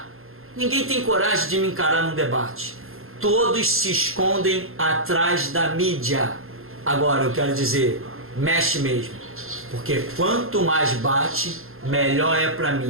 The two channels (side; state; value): left; late; 0.61 ms